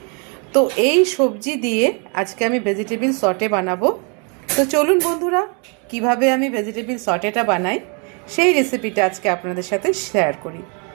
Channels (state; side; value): quieter; left; 35.4 dB